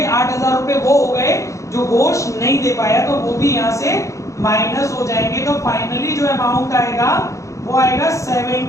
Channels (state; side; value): late; right; 0.15 ms